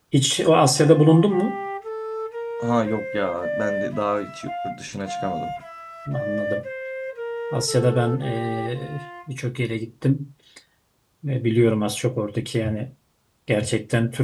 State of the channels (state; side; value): identical; both; correlation 1.00